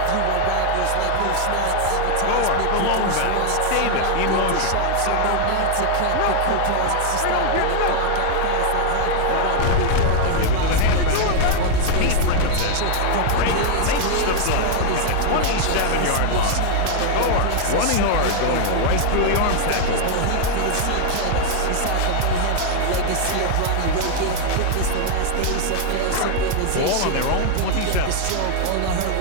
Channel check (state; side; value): different; both; correlation 0.00